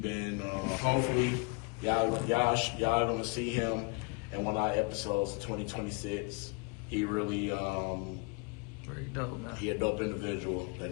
been, hopefully, y'all gonna see him in one of our episodes of 2026. He really, Very dope, man. he a dope individual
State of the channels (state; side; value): quieter; right; 30.6 dB